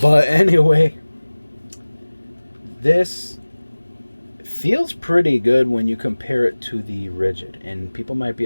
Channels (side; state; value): both; inverted; correlation -1.00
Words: anyway, this feels pretty good when you compare it to the rigid, and people might be